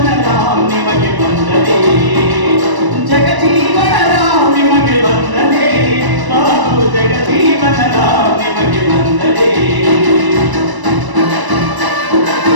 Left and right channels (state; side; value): late; left; 1.0 ms